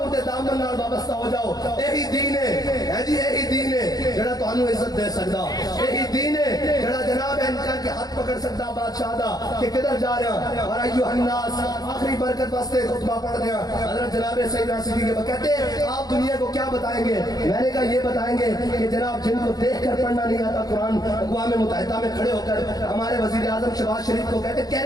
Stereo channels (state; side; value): late; right; 0.19 ms